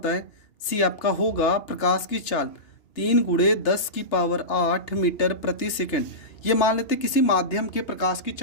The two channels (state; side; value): late; right; 2.9 ms